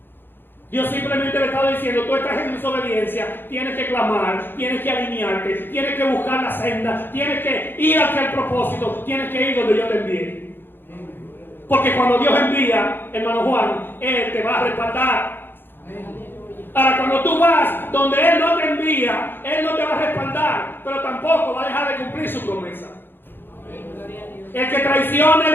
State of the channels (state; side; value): late; right; 0.10 ms